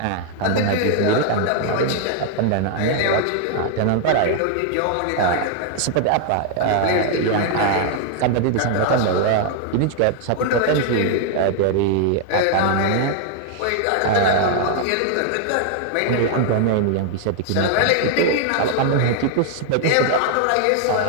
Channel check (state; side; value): different; both; correlation 0.00